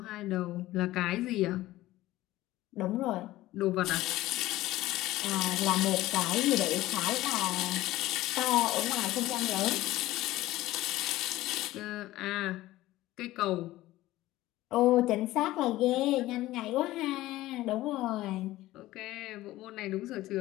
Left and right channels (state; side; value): quieter; right; 16.5 dB